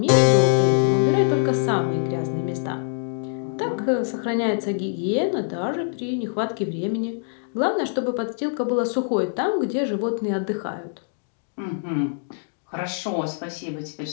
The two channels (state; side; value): silent; right; digital silence